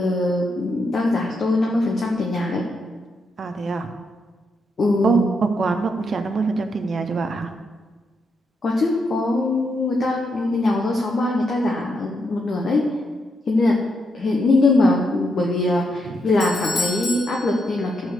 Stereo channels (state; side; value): normal; both; correlation 0.80